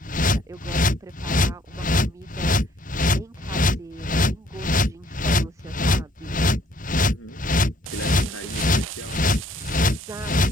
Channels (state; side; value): normal; both; correlation 0.63